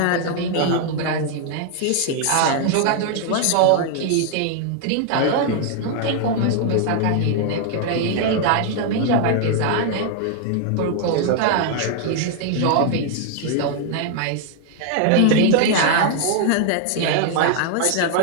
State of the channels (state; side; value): different; both; correlation 0.00